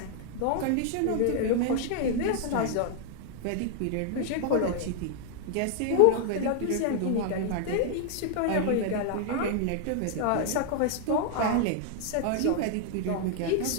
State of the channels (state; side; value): different; both; correlation 0.00